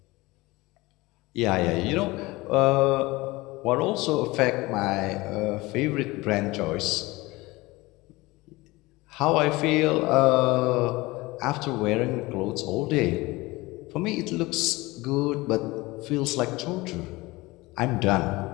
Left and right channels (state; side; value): quieter; right; 21.4 dB